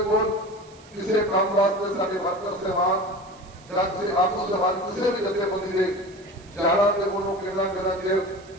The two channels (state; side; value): noise; right; hiss, 26 dB below the sound